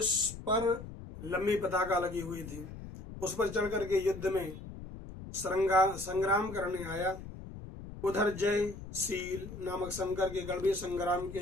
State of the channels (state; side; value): noise; left; rumble, 12 dB below the sound